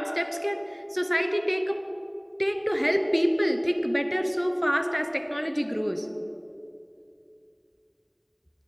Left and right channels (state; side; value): identical; both; correlation 1.00